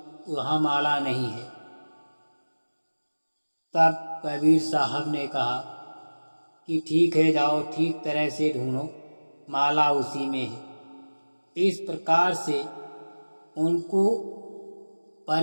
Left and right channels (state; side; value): inverted; both; correlation -1.00